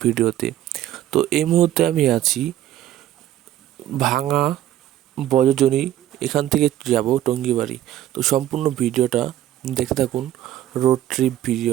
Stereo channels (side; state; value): left; quieter; 12.9 dB